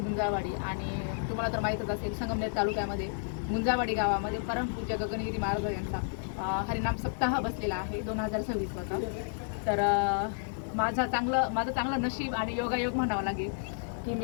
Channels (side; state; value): right; silent; digital silence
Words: आणि तुम्हाला तर माहीतच असेल, संगमनेर तालुक्यामध्ये गुंजाळवाडी गावामध्ये परमपूज्य गगनगिरी महाराज यांचा हरिनाम सप्ताह बसलेला आहे 2026 चा. तर माझं चांगलं नशीब आणि योगायोग म्हणावं लागेल की